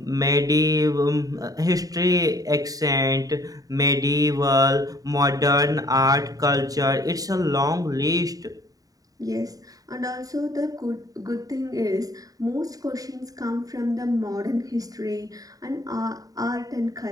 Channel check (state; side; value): late; left; 0.18 ms